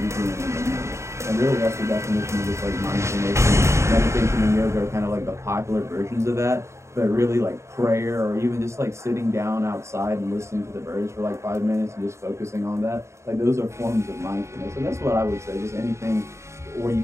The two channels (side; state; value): left; late; 0.14 ms